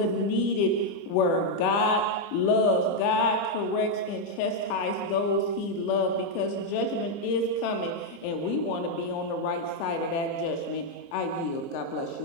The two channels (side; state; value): right; late; 30 ms